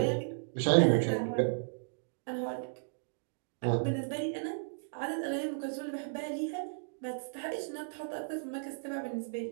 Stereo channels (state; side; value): silent; left; digital silence